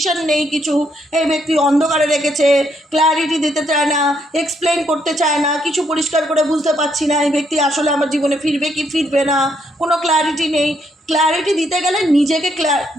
নেই কিছু, এই ব্যক্তি অন্ধকারে রেখেছে, ক্ল্যারিটি দিতে চায় না, এক্সপ্লেন করতে চায় না, কিছু পরিষ্কার করে বুঝতে পারছি না এই ব্যক্তি আসলে আমার জীবনে ফিরবে কি ফিরবে না, কোনো ক্ল্যারিটি নেই। ক্ল্যারিটি দিতে গেলে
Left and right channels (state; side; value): normal; both; correlation 0.74